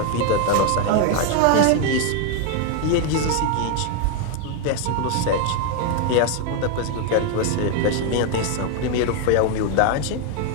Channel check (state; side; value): different; both; correlation 0.01